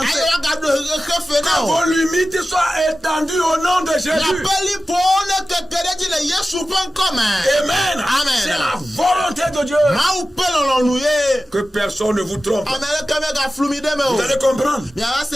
Que vos limites soient étendues au nom de Jésus. Amen. C'est la volonté de Dieu. Que personne ne vous trompe. Vous allez comprendre.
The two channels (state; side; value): normal; both; correlation 0.94